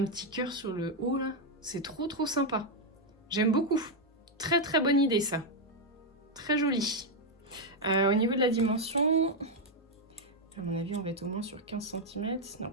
petit cœur sur le haut, là. C'est trop sympa. J'aime beaucoup. Très bonne idée, ça. Très joli. Au niveau de la dimension, à mon avis, on va être au moins sur 15 cm. Non,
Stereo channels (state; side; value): normal; both; correlation 0.01